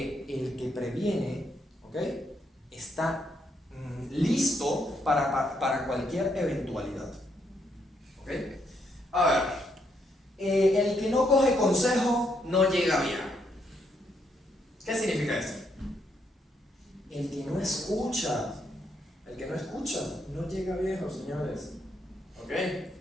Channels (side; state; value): both; normal; correlation 0.75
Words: el que previene, ¿ok? Está listo para cualquier eventualidad, ¿ok? A ver, el que no coge consejo no llega bien. ¿Qué significa esto? El que no escucha no llega viejo, señores. ¿Ok?